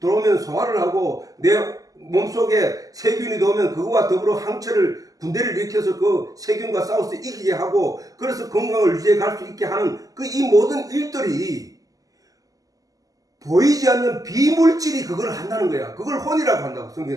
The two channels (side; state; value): left; late; 0.17 ms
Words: 소화를 하고 내 몸속에 세균이 들어오면 그거와 더불어 항체를 군대를 일으켜서 그 세균과 싸워서 이기게 하고 그래서 건강을 유지해 갈 수 있게 하는 이 모든 일들이 보이지 않는 비물질이 그걸 한다는 거야. 그걸 혼이라고 한다고.